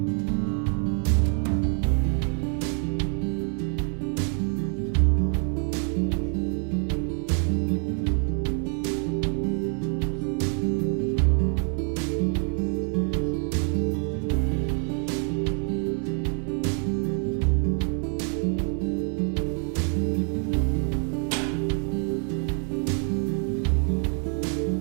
Alright, so finally we're to the part of the show where we get to work on the carburetor. This is only going to take maybe an hour, so plan your day out pretty well. All you're going to need is gas and brake cleaner or carb cleaner. They're both really the same thing. And that's really all you're going to need. So let's get started.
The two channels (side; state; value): left; quieter; 38.7 dB